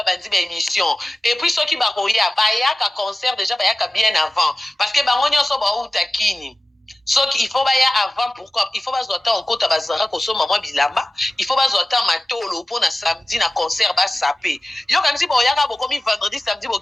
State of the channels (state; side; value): normal; both; correlation 0.95